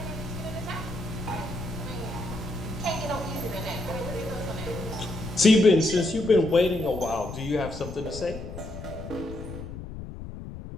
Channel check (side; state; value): left; noise; rumble, 10 dB below the sound